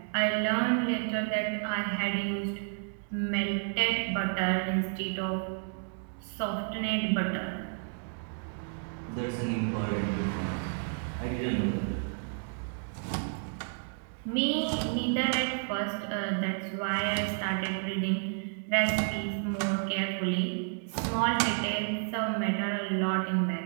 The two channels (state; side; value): silent; left; 57 dB below the other